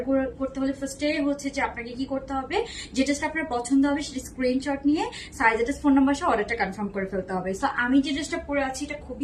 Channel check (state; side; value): identical; both; correlation 1.00